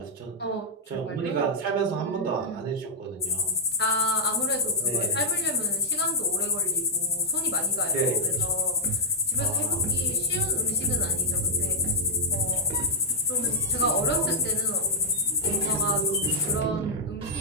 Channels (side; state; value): both; normal; correlation -0.07